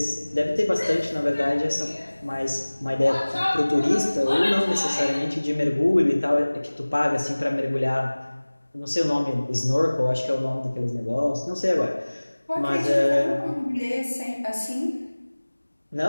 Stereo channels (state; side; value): inverted; both; correlation -1.00